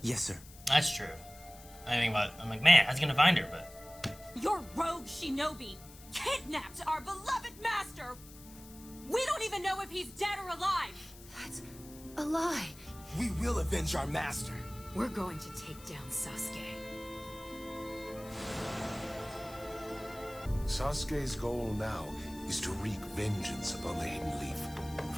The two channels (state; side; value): noise; left; hiss, 19 dB below the sound